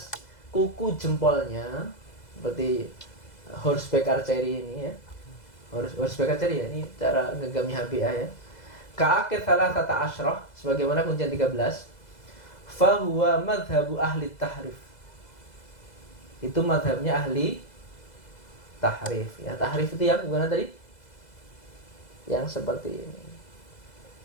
kuku jempolnya, seperti horseback archery ini ya. Horseback archery ya, ini cara ngegami HBA ya. Ka'akid thalathata asyrah, sebagaimana kuncian 13. Fahuwa madhabu ahli tahrif, itu madhabnya ahli tahrif ya. Tahrif itu yang gimana tadi? Yang seperti ini.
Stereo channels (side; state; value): right; late; 2.0 ms